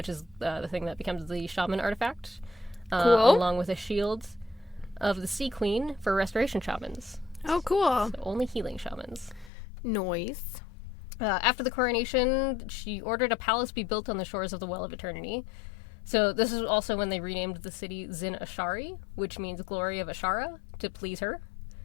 is the thing that becomes the shaman artifact. Cool. Along with a shield of the Sea Queen for restoration shamans. Oh, cool. So only healing shamans. Noise. After the coronation, she ordered a palace be built on the shores of the Well of Eternity. So this is also when they renamed the city Zin Ashari, which means glory of Azshara, to please her.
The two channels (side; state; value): right; drops out; at 9.5 s